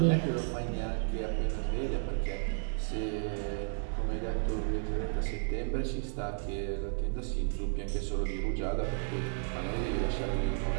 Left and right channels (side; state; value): left; silent; digital silence